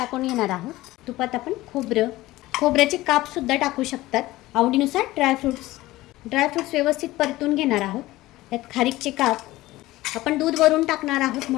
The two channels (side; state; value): right; quieter; 17.7 dB